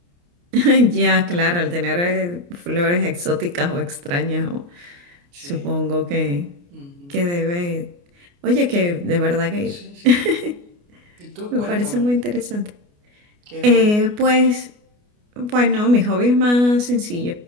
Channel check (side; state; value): left; late; 29 ms